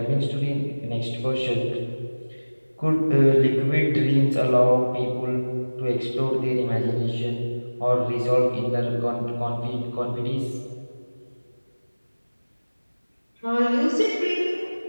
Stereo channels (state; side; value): inverted; both; correlation -1.00